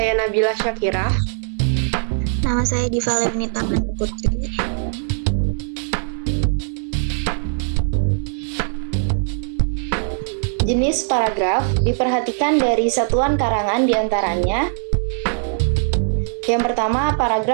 Nabila Syakirah. Nama saya Diva Lemnita Putri. Jenis paragraf diperhatikan dari satuan karangan diantaranya. Yang pertama,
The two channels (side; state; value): left; silent; digital silence